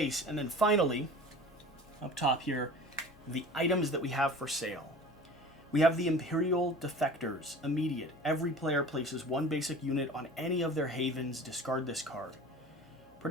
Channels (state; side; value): normal; both; correlation 0.40